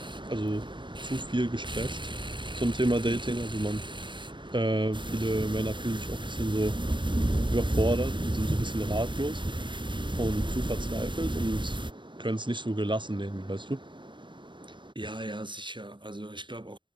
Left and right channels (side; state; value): left; late; 0.23 ms